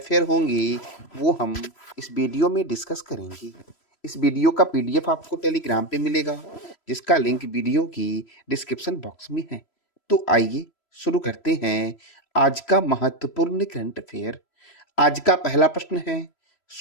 होंगे वो हम इस वीडियो में डिस्कस करेंगे। इस वीडियो का पीडीएफ आपको टेलीग्राम पे मिलेगा जिसका लिंक वीडियो की डिस्क्रिप्शन बॉक्स में है। तो आइए शुरू करते हैं आज का महत्वपूर्ण करंट अफेयर। आज का पहला प्रश्न है,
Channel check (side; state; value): right; late; 3.0 ms